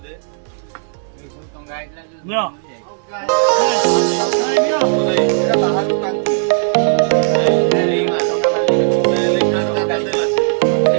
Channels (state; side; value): silent; left; 69 dB below the other